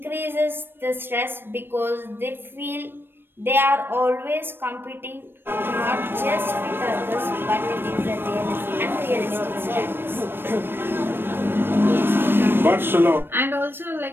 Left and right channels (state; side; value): late; left; 0.10 ms